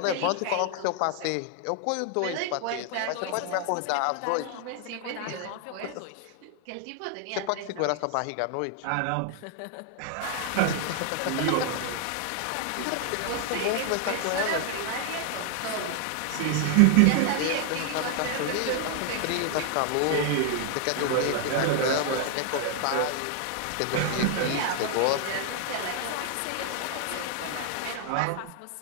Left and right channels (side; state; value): both; different; correlation 0.00